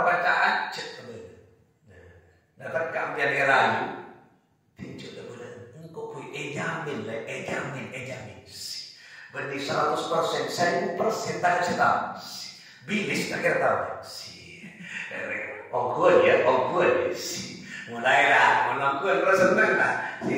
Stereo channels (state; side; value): identical; both; correlation 1.00